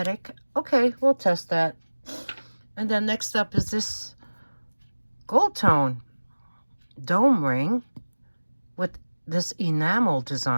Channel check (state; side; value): inverted; both; correlation -1.00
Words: Okay, we'll test that. And then next up is this Goldtone dome ring with this enamel